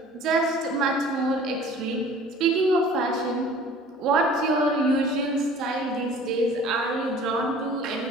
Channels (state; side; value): normal; both; correlation 0.47